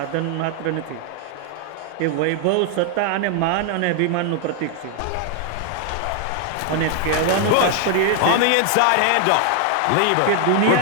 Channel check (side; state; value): both; different; correlation 0.00